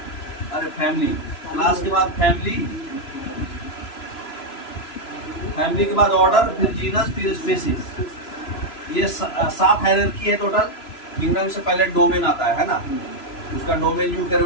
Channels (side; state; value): right; late; 3.0 ms